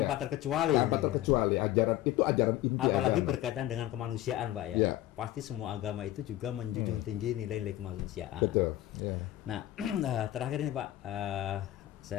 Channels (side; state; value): right; quieter; 14.8 dB